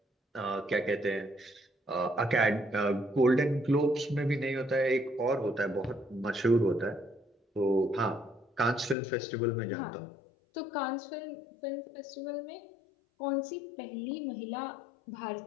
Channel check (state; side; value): drops out; right; at 9.0 s